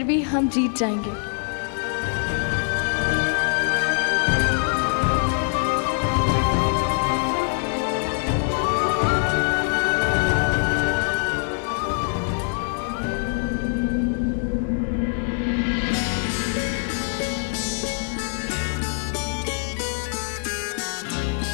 भी हम जीत जाएंगे।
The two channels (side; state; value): right; silent; 59 dB below the other